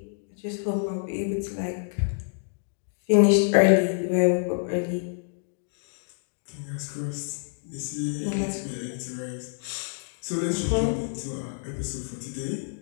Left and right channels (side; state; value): right; silent; digital silence